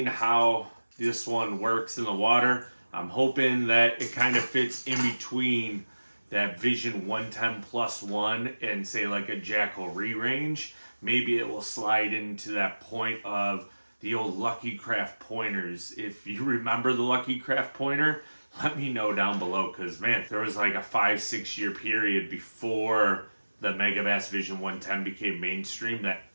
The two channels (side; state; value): both; inverted; correlation -1.00